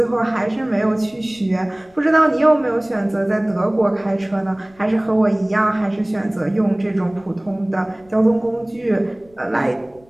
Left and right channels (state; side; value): noise; left; rumble, 29 dB below the sound